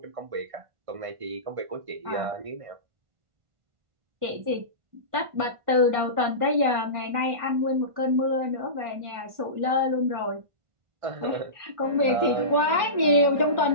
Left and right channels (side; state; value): left; late; 1.5 ms